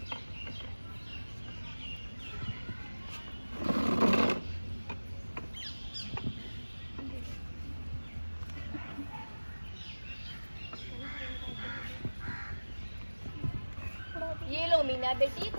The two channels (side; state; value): both; inverted; correlation -1.00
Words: ये लो मीना बेटी,